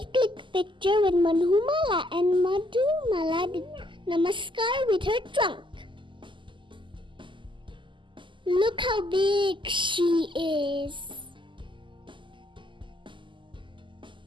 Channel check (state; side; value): late; left; 0.24 ms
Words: clicked picture with Madhumala and Madhumala did namaskar with her trunk. Look how big she is.